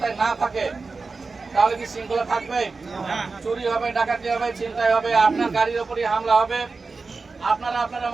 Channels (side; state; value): left; quieter; 4.1 dB